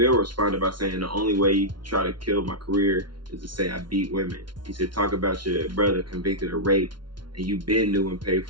responded by saying, the only way you try to kill my career is to say I beat women. He said, talk about your brother convicted of rape and you been new and paid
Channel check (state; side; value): late; left; 0.72 ms